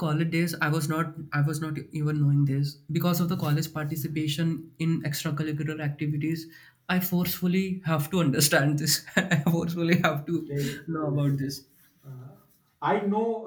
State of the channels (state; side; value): identical; both; correlation 1.00